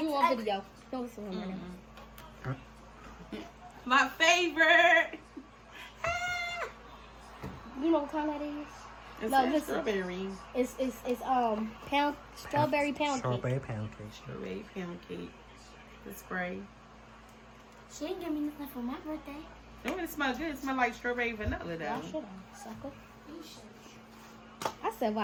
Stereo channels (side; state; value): both; identical; correlation 1.00